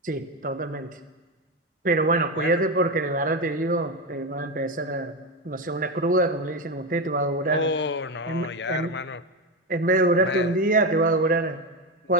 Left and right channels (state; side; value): normal; both; correlation 0.14